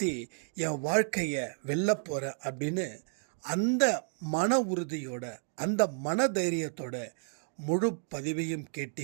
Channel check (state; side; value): silent; left; 57 dB below the other